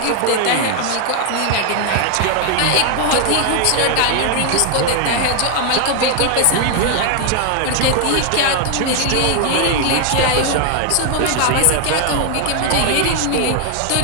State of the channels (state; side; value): different; both; correlation 0.00